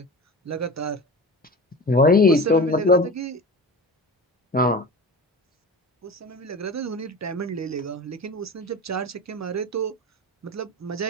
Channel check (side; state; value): both; normal; correlation 0.32